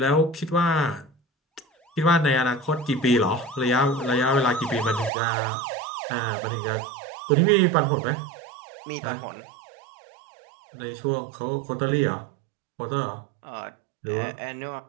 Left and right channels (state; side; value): drops out; left; at 5.1 s